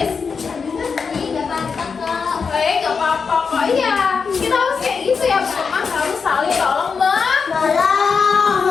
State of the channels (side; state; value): right; quieter; 5.5 dB